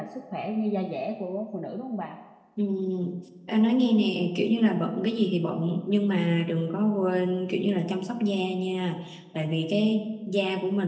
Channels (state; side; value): identical; both; correlation 1.00